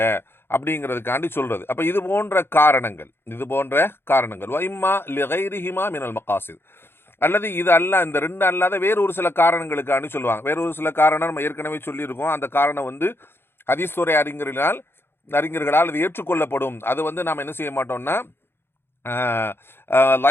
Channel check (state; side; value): late; right; 0.11 ms